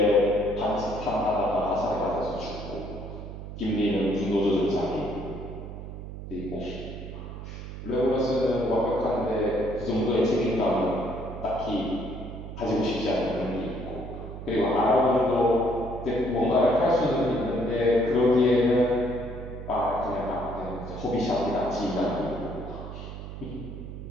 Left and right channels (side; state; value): right; noise; hum, 10 dB below the sound